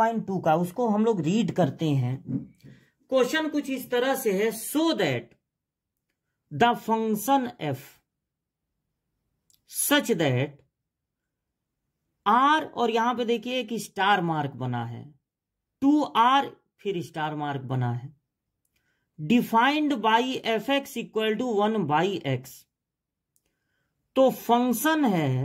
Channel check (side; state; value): both; identical; correlation 1.00